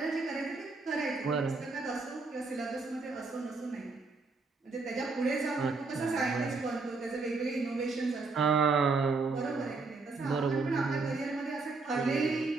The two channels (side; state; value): left; quieter; 4.0 dB